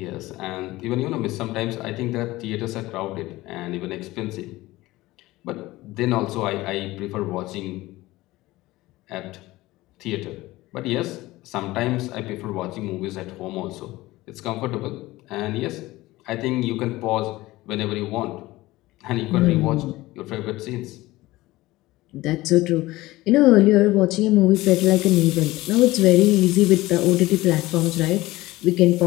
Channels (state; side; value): quieter; right; 18.6 dB